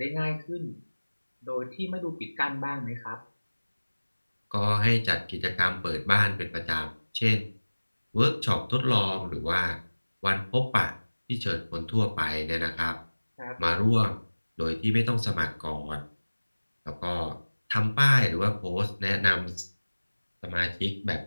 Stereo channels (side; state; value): both; inverted; correlation -1.00